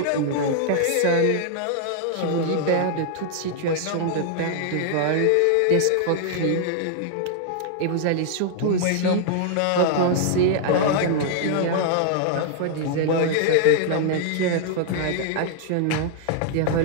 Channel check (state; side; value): different; both; correlation -0.01